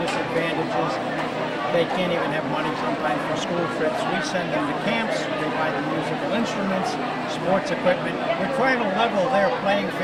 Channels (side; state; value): both; identical; correlation 1.00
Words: disadvantages. They can't even have money sometimes for school trips. We send them to camps, they buy them musical instruments, sports equipment. We're trying to level their playing